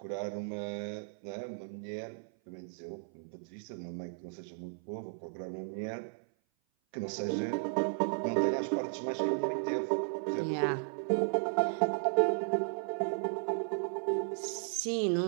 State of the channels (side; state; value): left; silent; 54 dB below the other